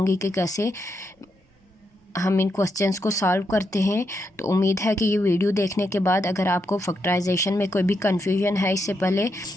कि कैसे हम इन क्वेश्चंस को सॉल्व करते हैं। तो उम्मीद है कि ये वीडियो देखने के बाद अगर आपको फैक्टराइजेशन में कोई भी कन्फ्यूजन है इससे पहले,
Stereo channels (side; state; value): both; normal; correlation 0.82